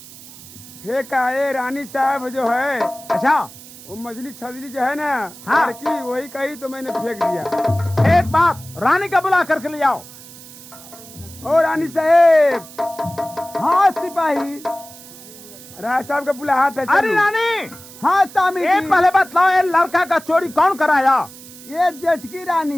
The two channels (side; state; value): right; noise; hiss, 18 dB below the sound